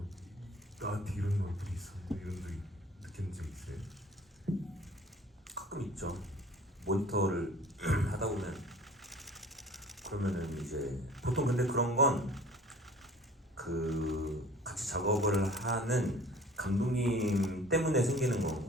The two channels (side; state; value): both; normal; correlation 0.47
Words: 나한테 이런 얼굴이 있었는데 이런 적 느낀 적 있어요? 가끔 있죠. 모니터를 하다 보면 그러면은 이제 보통 근데 그런 건 그 같이 작업을 하는 감독님 때문에 생기는